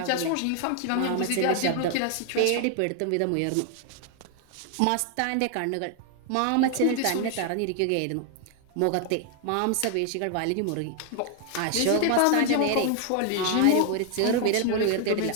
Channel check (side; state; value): both; different; correlation 0.00